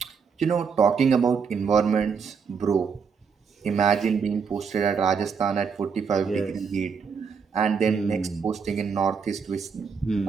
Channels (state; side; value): quieter; left; 6.0 dB